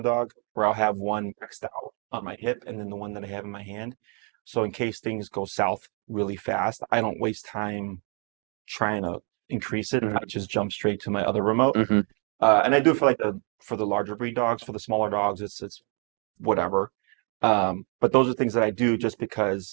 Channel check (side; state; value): left; quieter; 37.7 dB